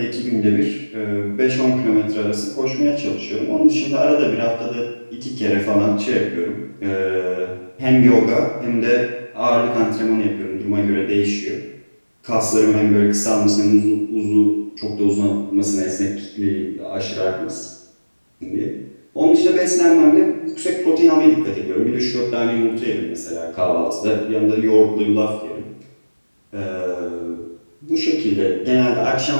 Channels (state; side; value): inverted; both; correlation -1.00